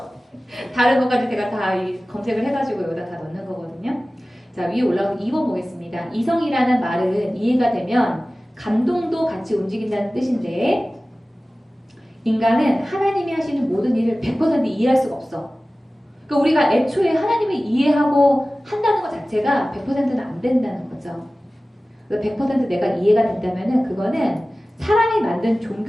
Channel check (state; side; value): normal; both; correlation 0.97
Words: 다른 것까지 제가 다 검색을 해가지고 여기다 다 넣는 거거든요. 자, 위에 올라온 2번 보겠습니다. 이성이라는 말은 이해가 되면 감동도 같이 움직인다는 뜻인데 인간은 하나님이 하시는 모든 일을 100% 이해할 수가 없어. 그러니까 우리가 애초에 하나님을 이해하고 한다는 것 자체가 100%는 안 된다는 거죠. 100% 내가 이해가 된다면은 그거는 사람이 만든